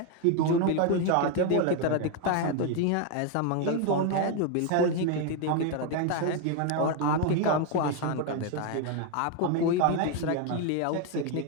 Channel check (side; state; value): both; different; correlation 0.01